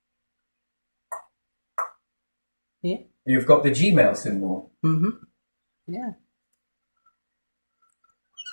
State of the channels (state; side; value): inverted; both; correlation -1.00